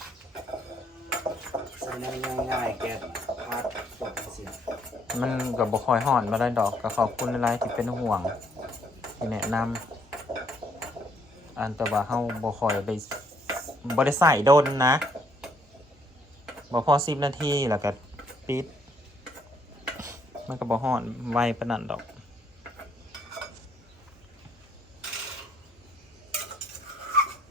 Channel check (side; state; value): both; normal; correlation 0.68